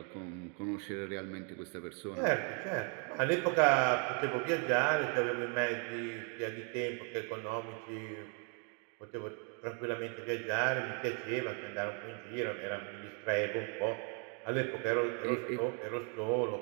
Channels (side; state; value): left; quieter; 38.4 dB